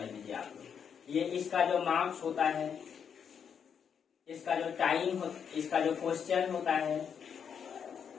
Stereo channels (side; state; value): right; quieter; 7.4 dB